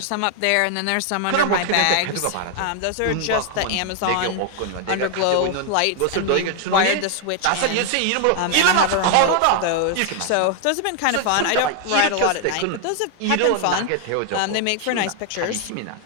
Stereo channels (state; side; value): different; both; correlation 0.00